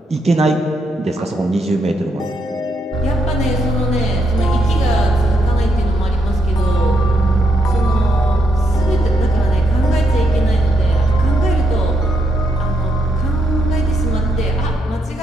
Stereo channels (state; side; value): normal; both; correlation 0.80